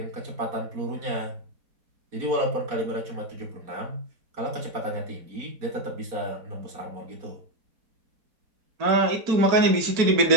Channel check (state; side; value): late; left; 4.6 ms